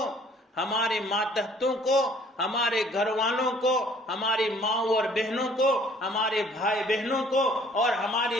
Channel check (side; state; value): both; normal; correlation 0.57